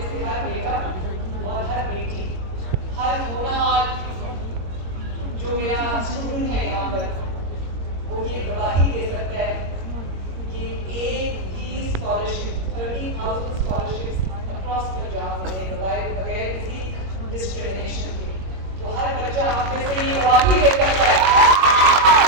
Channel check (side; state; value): left; late; 22 ms